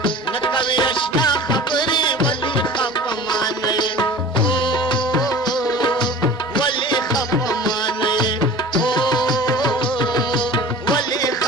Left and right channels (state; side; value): normal; both; correlation 0.41